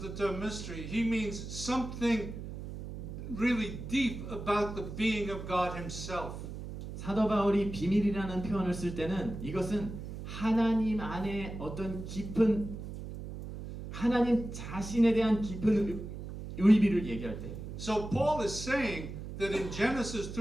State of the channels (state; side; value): noise; right; hum, 9 dB below the sound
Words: term mystery, he means something really deep about the being of God himself. 사도 바울이 비밀이라는 표현을 쓸 때는 이것은 하나님 안에 어떤 깊은 하나님 자신에 대한 깊은 의미를 얘기할 때. So Paul is saying that in Genesis